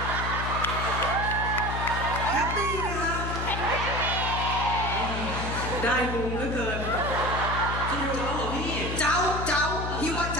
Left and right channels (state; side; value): noise; left; hum, 4 dB below the sound